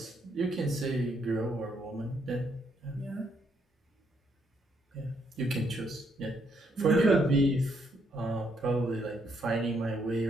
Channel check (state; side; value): normal; both; correlation 0.74